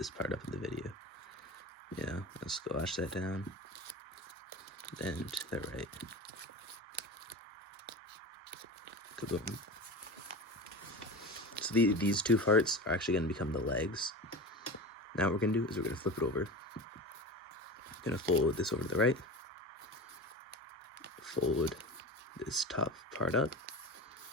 part up in the video. You know, let's squash that down. Then to the right. Kaboom. So these 2 parts are actually going to become the legs. Now what we're going to do is we're going to flip it over. Going to fold this over to the right. Fold this top part up.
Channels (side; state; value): both; normal; correlation 0.30